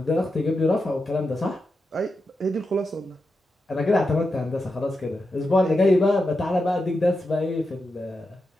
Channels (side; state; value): both; normal; correlation 0.88